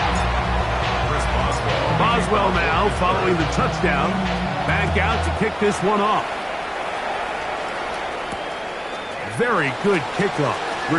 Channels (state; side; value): identical; both; correlation 1.00